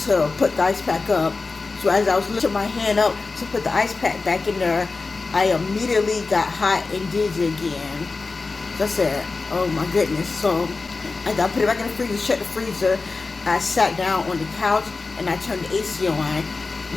to put the ice pack up. So as I was lifting my hand up to put the ice pack back in there, I immediately got hot and dizzy again. So I said, oh my goodness. So I put it back in the freezer, shut the freezer. I sat down on the couch and I turned the AC on.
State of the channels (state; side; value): quieter; right; 3.9 dB